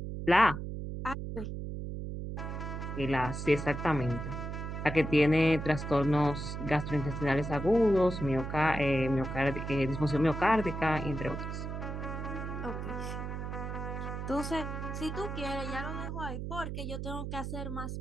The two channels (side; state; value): right; noise; hum, 5 dB below the sound